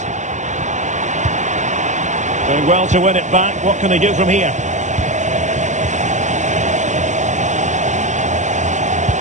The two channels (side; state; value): left; late; 0.35 ms